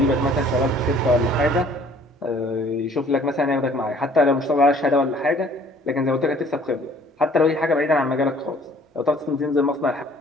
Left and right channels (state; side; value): normal; both; correlation 0.56